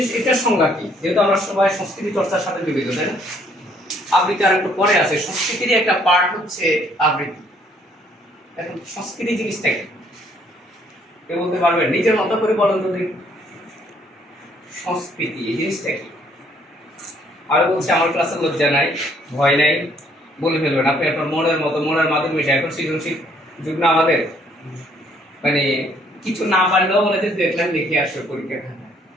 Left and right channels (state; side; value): normal; both; correlation 0.65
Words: এটার সংজ্ঞা কি? যেহেতু আমরা সবাই সংস্কৃতি চর্চার সাথে জড়িত, তাই না? আবৃত্তি আর একটু পরে আছে, সংস্কৃতির একটা পার্ট হচ্ছে আবৃত্তি। এখন সংস্কৃতি জিনিসটা কি কেউ বলতে পারবেন? নিজের মতো করে বলেন তো দেখি, সংস্কৃতি এই জিনিসটা কি? আর বলছে আমার ক্লাসে লজ্জা নাই, ভয় নাই, বলে ফেলবেন আপনি আপনার মনের মতো, মনের মাধ্যমে মিশে। এখন সৃজনশীল যুগ না আমাদের, মানে কিছু না পারলেও বলে যে দেখলাম লিখে আসো পরীক্ষা খাতা,